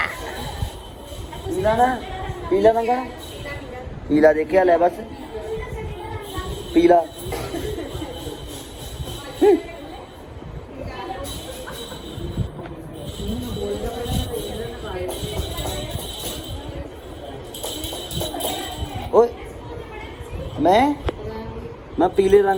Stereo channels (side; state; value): both; identical; correlation 1.00